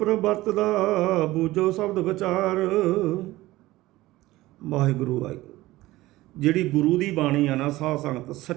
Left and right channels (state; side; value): quieter; left; 17.8 dB